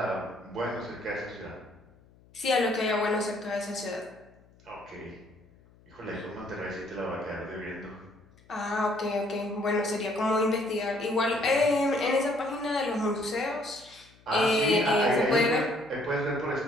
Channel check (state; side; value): noise; left; hum, 28 dB below the sound